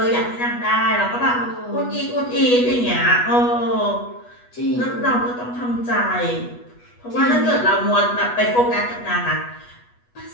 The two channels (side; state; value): right; late; 8.2 ms